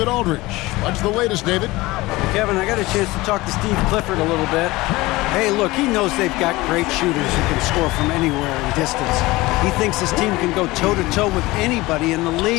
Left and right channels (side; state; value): right; quieter; 20.3 dB